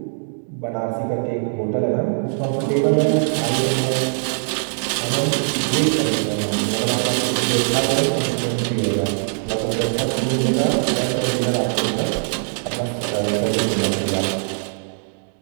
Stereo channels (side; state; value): left; silent; digital silence